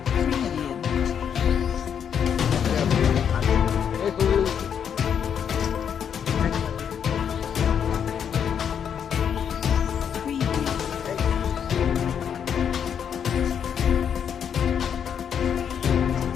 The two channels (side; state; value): right; quieter; 8.0 dB